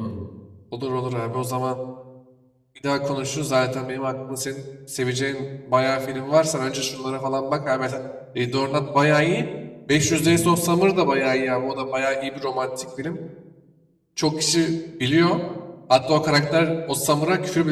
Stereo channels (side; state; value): both; identical; correlation 1.00